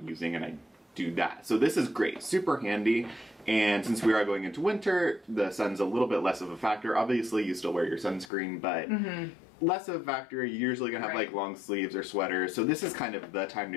and I do that. So this is great, super handy. And since we are going into winter, the sun's a little bit less of a factor. Obviously, you still wear your sunscreen, but less of a factor. You're usually gonna have like long sleeves or sweaters. So this is kind of the time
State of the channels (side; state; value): right; drops out; at 8.3 s